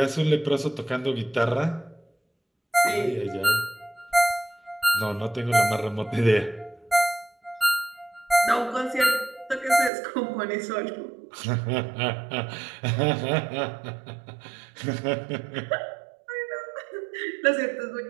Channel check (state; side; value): drops out; left; at 9.9 s